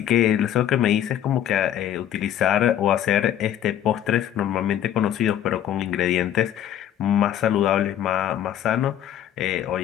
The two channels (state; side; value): quieter; right; 10.8 dB